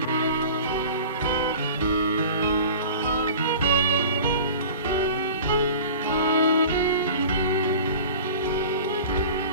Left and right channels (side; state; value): both; inverted; correlation -0.39